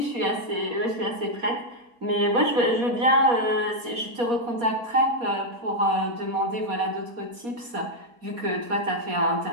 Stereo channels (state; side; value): late; left; 4.2 ms